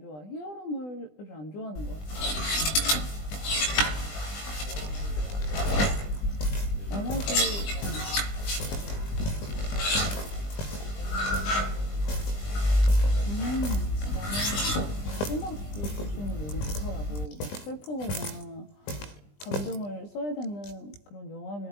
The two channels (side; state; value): right; late; 20 ms